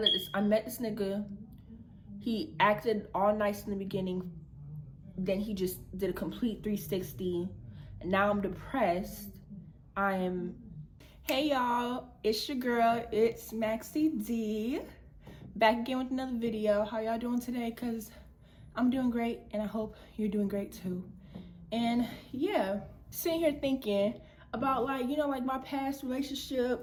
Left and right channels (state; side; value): identical; both; correlation 1.00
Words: met this nigga. He acted all nice in the beginning. Then he just did a complete 360. And now I'm depressed. Hey y'all, it's your girl, it's Maxie D. Back again with another video. How y'all doing today? Cause I'm doing great and I hope you're doing great too. And yeah, sitting here thinking about like my past